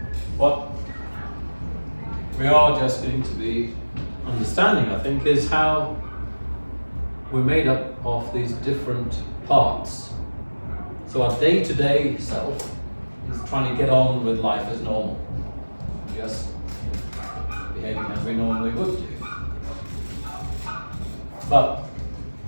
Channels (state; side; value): inverted; both; correlation -1.00